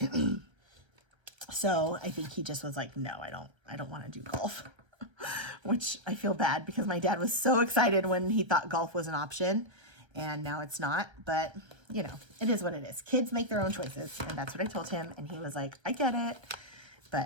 So I think he just was like, no, I don't want to do golf. Which I feel bad, because my dad was so excited when he thought golf was an option, and now it's not. But you know, it is what it is. Kids make their own choices, and that's what I told him, and he was like, I get it.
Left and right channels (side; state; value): left; late; 1.3 ms